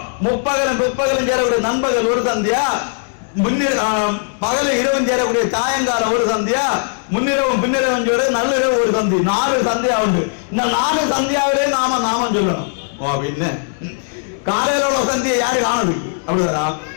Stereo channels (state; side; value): silent; right; 67 dB below the other